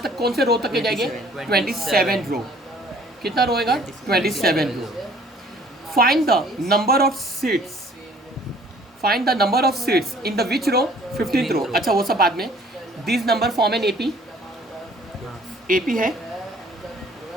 तक, कौन से रो तक के जाएंगे 27 रो। कितना रो होगा 27 row. Find the number of seats, find the number of seats in the which row 15th row. अच्छा वो सब बाद में। This number form an AP, AP है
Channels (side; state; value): both; normal; correlation 0.55